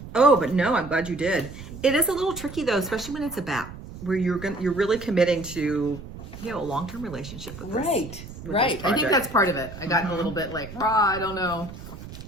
Oh, but no, I'm glad you did. It is a little tricky though, especially when it's a BAP, where you're really committing to a long-term relationship with this. Right. with Right. this I think project. that's part of it. I got a little bit like, I don't know.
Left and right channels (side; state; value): right; noise; rumble, 13 dB below the sound